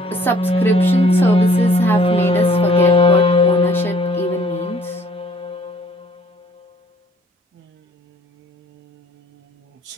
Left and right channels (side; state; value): both; normal; correlation 0.58